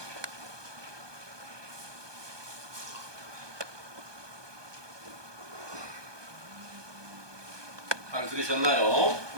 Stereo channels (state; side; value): late; left; 1.2 ms